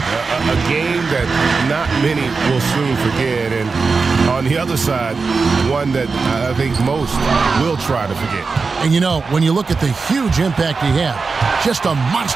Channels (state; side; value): quieter; left; 4.5 dB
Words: game that not many will soon forget. And on the other side, one that I think most will try to forget. And you know, when you look at the huge impact he had, just a